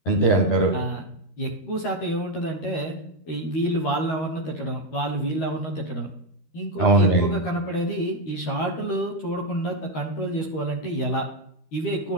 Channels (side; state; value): right; late; 13 ms